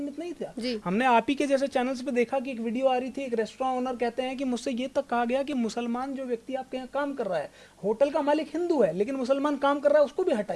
नहीं था। हमने आप ही के जैसे चैनल्स पे देखा कि एक वीडियो आ रही थी, एक रेस्टोरेंट ओनर कहते हैं कि मुझसे ये तक कहा गया कि मुसलमान जो व्यक्ति आपके यहाँ काम कर रहा है, होटल का मालिक हिंदू है लेकिन मुसलमान काम कर रहा है, उसको भी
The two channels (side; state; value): both; identical; correlation 1.00